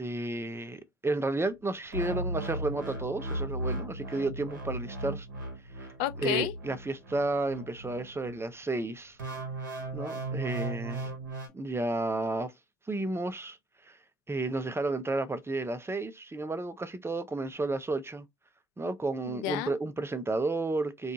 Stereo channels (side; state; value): both; normal; correlation 0.57